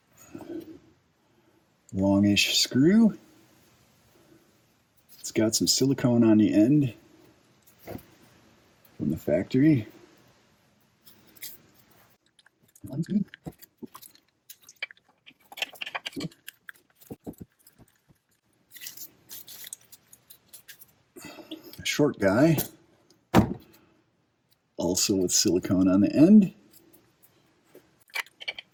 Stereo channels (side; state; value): both; identical; correlation 1.00